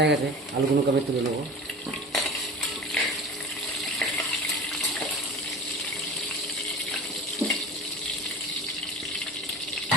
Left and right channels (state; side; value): normal; both; correlation 0.36